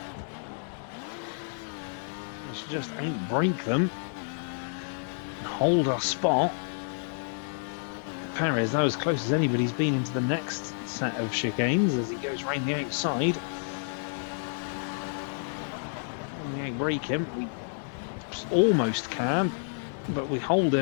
just outbrake them and hold our spot. Perez, that was as close as anybody's been into the next set of chicanes as he goes round the outside. When we outbrake him, we almost can, but we hold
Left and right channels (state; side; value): silent; right; digital silence